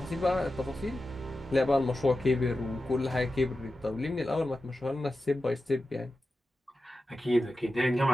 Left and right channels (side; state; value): both; normal; correlation 0.92